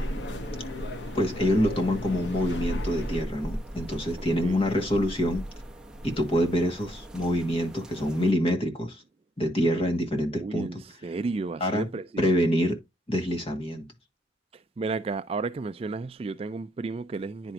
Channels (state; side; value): normal; both; correlation 0.74